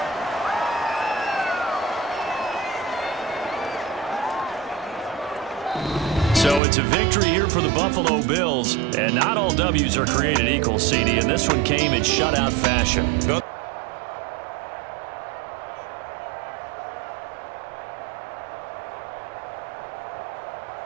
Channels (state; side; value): drops out; left; at 6.6 s